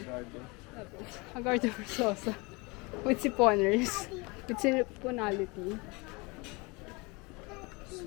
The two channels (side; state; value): right; quieter; 27.0 dB